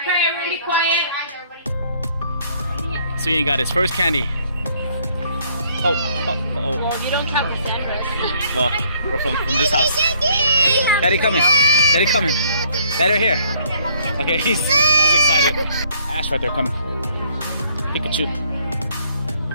pray. Everyone be quiet. So Ian got his first candy. Oh. Well, you don't count the Sandra. Well, we're from this house. Daddy coming. Daddy coming. Daddy right here. Okay, he's excited. Ash right there coming. Pikachu.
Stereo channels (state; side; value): inverted; both; correlation -0.64